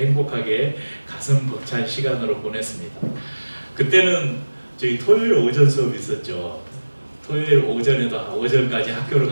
가슴 벅찬 시간으로 보냈습니다. 그때는 저희 토요일 오전 수업이 있었죠. 토요일 오전에도 오전까지 학교를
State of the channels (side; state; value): both; inverted; correlation -1.00